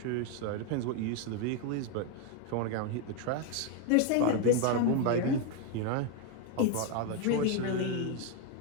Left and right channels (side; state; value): both; different; correlation 0.01